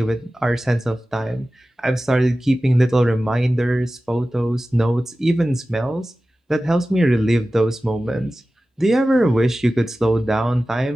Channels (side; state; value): both; normal; correlation 0.95